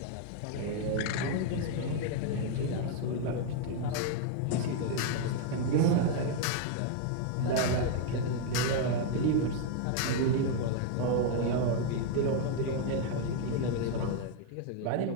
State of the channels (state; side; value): different; both; correlation 0.00